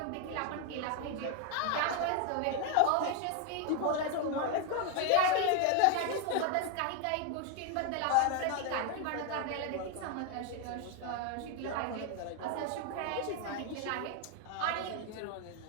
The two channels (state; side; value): different; both; correlation 0.01